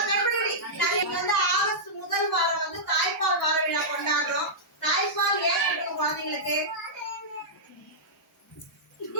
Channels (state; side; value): normal; both; correlation -0.12